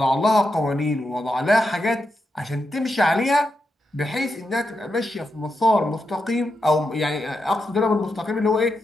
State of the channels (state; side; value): normal; both; correlation 0.86